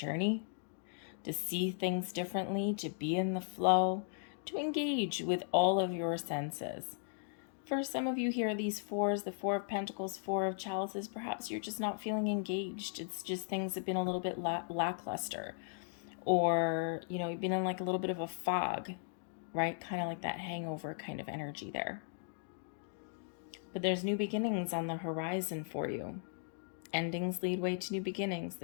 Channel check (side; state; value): right; silent; digital silence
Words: to see things differently, to be in the flow, to engage with all of your senses. For some of you here, these fours, the Four of Pentacles, Four of Chalices, perhaps you're just not feeling engaged. It's just things have been a little bit lackluster. Or, you know, you've been in like a little bit of a fog, right? Kind of like that hangover kind of energy there. But there's new beginnings on the horizon for you. Endings lead way to new beginnings.